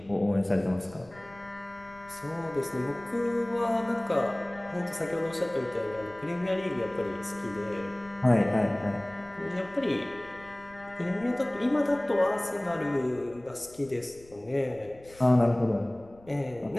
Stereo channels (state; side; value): noise; left; rumble, 24 dB below the sound